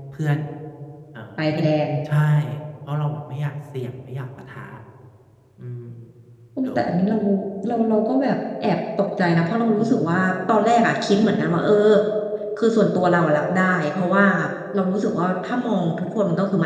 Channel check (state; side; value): identical; both; correlation 1.00